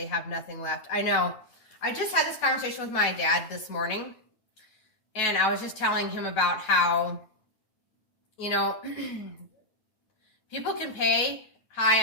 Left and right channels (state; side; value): late; right; 9.3 ms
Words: have nothing left. I know. I just had this conversation with my dad this morning, and I was just telling him about how, you know, people can pay high